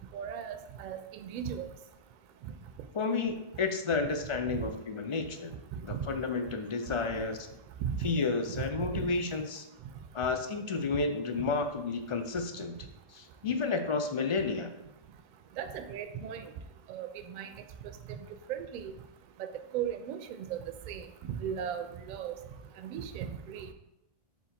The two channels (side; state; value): left; late; 1.3 ms